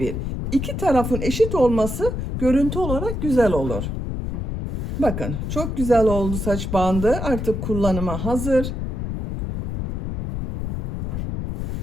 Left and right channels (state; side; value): noise; left; rumble, 4 dB below the sound